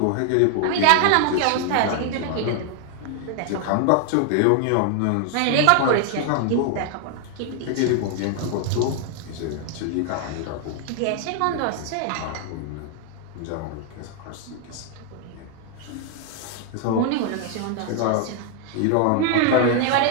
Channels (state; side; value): different; both; correlation 0.00